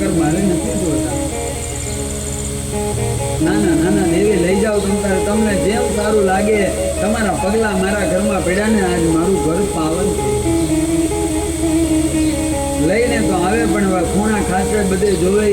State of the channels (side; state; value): both; identical; correlation 1.00